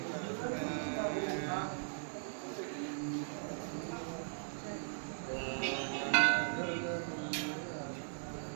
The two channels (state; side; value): silent; left; digital silence